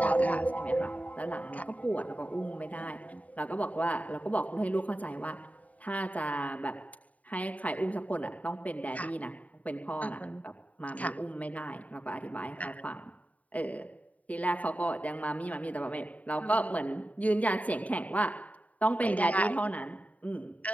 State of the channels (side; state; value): right; late; 0.070 ms